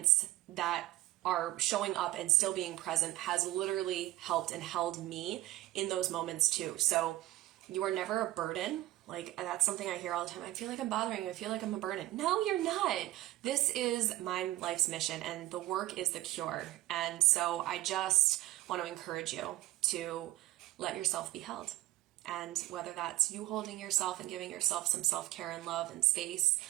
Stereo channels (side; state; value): left; quieter; 17.0 dB